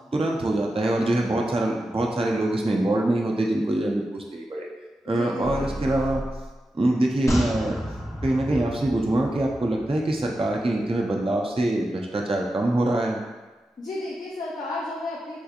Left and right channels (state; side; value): normal; both; correlation 0.90